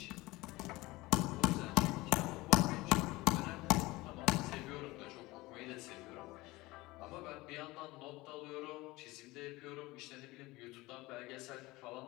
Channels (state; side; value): quieter; right; 20.7 dB